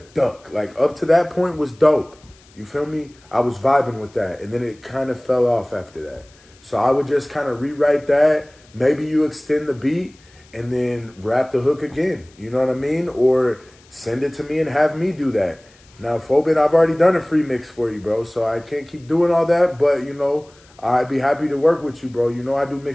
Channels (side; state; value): left; noise; hiss, 29 dB below the sound